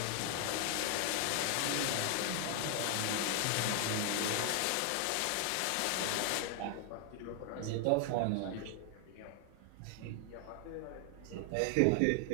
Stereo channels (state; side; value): different; both; correlation 0.00